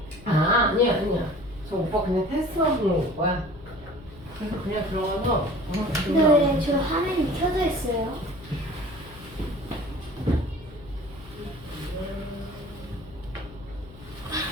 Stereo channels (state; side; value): noise; left; hum, 19 dB below the sound